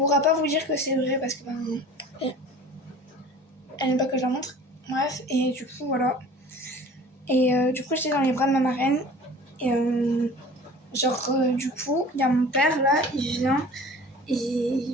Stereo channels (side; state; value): both; normal; correlation 0.44